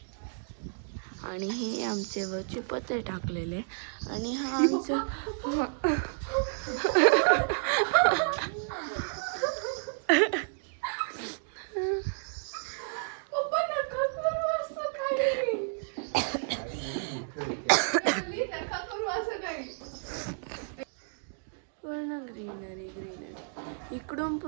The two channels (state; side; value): silent; left; digital silence